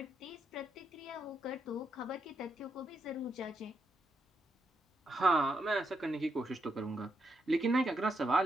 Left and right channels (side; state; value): both; normal; correlation 0.80